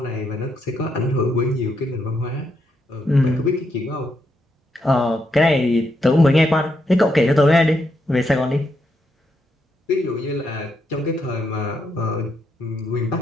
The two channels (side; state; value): both; normal; correlation 0.80